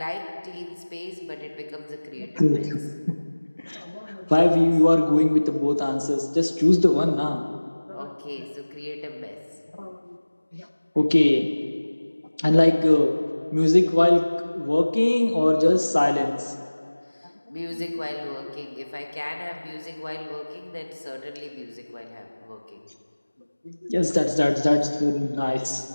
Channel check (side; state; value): both; inverted; correlation -1.00